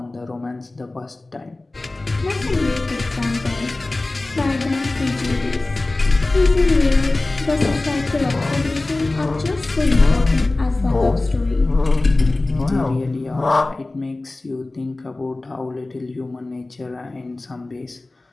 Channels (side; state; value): right; quieter; 3.0 dB